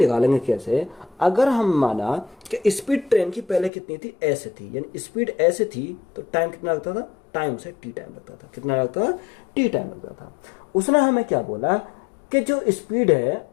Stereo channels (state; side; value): drops out; right; at 3.7 s